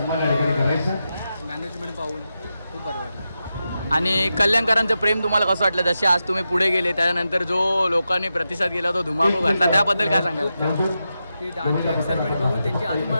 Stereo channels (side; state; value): both; inverted; correlation -0.89